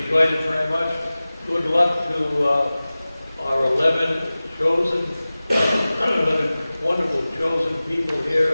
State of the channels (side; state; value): both; inverted; correlation -0.97